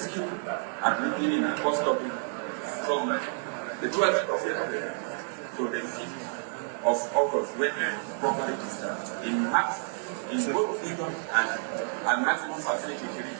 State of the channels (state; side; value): silent; left; digital silence